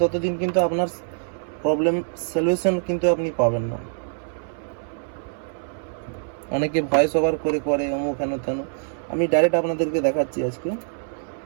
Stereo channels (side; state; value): left; silent; 61 dB below the other